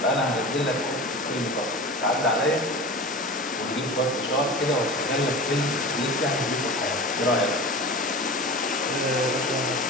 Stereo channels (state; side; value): normal; both; correlation 0.33